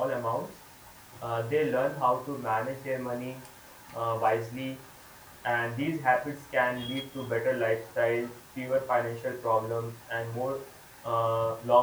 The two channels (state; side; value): identical; both; correlation 1.00